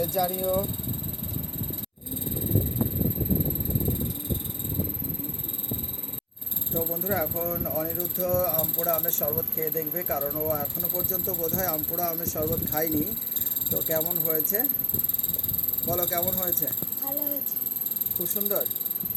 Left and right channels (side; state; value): both; identical; correlation 1.00